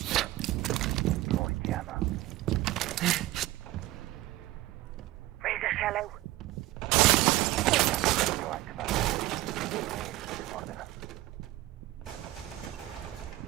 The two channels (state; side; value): quieter; left; 17.2 dB